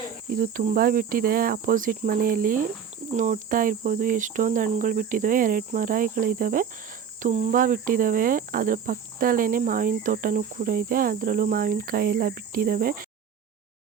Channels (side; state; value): left; quieter; 7.5 dB